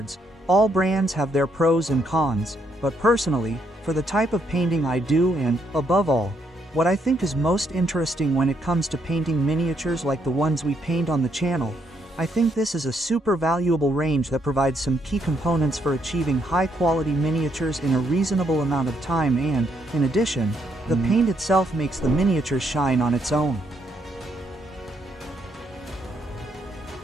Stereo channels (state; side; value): normal; both; correlation 0.74